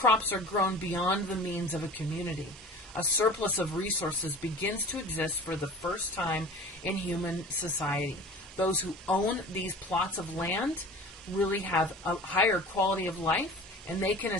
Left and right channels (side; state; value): both; normal; correlation 0.41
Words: are grown beyond the means of a community. A surplus of resources begins to exist for the first time in human society. Those who own these plots of land really have a higher quality of life, and they can